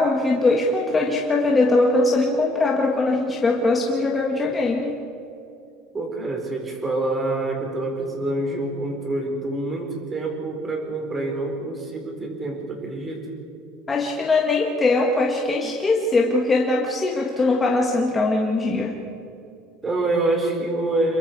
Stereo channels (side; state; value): both; normal; correlation 0.68